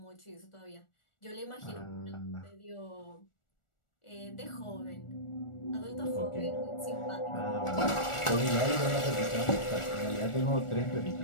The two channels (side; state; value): right; late; 1.4 ms